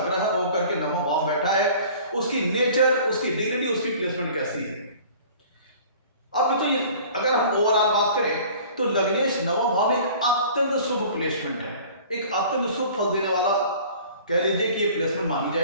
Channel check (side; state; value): both; inverted; correlation -0.47